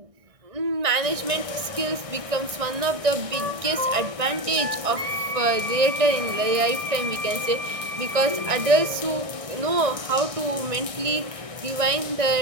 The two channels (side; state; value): left; late; 1.6 ms